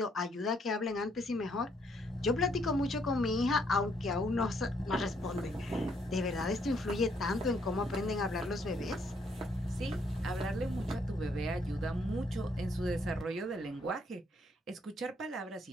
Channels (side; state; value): both; normal; correlation 0.70